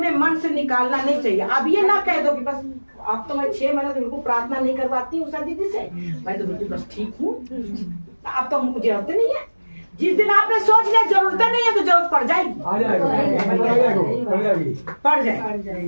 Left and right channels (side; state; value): both; inverted; correlation -1.00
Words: मन से निकालना नहीं चाहिए। अब ये ना कह दो कि बस अब तो मैं 6 महीने से बिल्कुल प्रार्थना नहीं करवाती हूँ उषा दीदी से, मैं तो बिल्कुल बस ठीक हूँ, अब तो मुझे जरूरत नहीं है। जिस दिन आपने सोच लिया जरूरत नहीं है तो जरूरत पड़ जाएगी, पड़